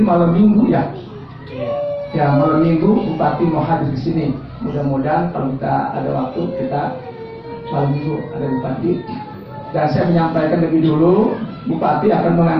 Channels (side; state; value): both; identical; correlation 1.00